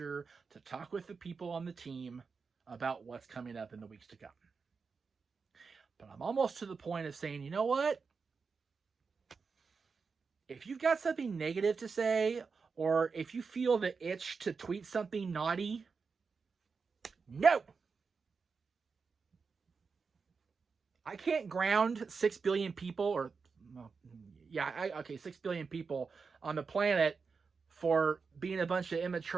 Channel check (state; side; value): quieter; left; 5.1 dB